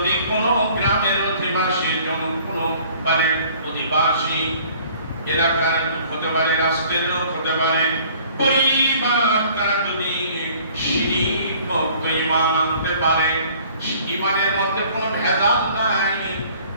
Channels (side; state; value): both; inverted; correlation -0.54